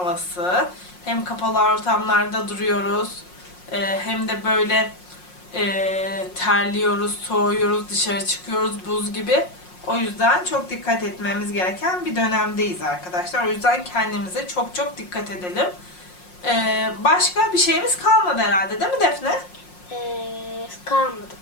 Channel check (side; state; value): right; late; 5.6 ms